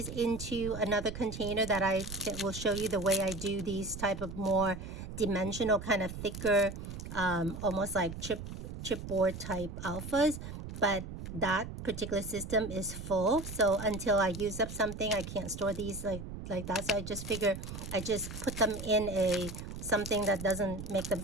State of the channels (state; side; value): noise; right; rumble, 9 dB below the sound